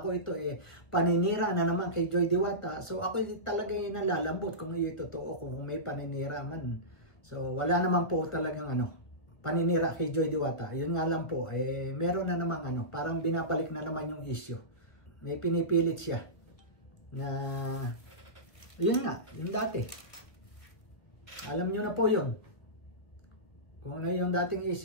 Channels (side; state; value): right; late; 1.7 ms